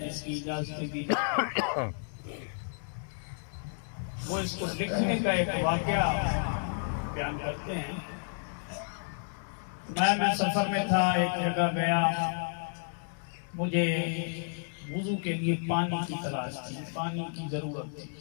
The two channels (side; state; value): right; silent; digital silence